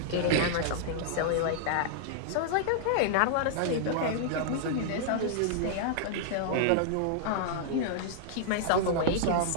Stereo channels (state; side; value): different; both; correlation -0.01